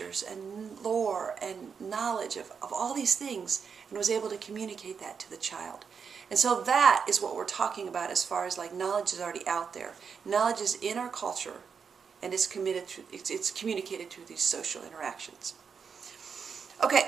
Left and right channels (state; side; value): quieter; left; 6.3 dB